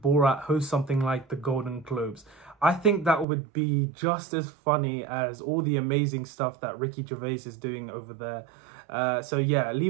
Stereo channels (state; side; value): drops out; left; at 3.2 s